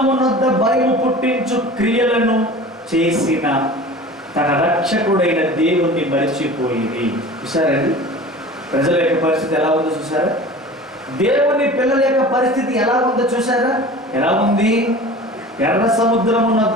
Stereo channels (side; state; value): both; normal; correlation 0.39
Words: నొద్ద భయము పుట్టించు క్రియలను చేసిన తన రక్షకుడైన దేవుణ్ణి మరిచిపోయింది. చూసారండి ప్రజల యొక్క పరిస్థితి ఎలా ఉందో చూసారా? దేవుని పిల్లల యొక్క పరిస్థితి ఎలా ఉందో చూసారా? ఎలా ఉంది? ఎర్ర సముద్రము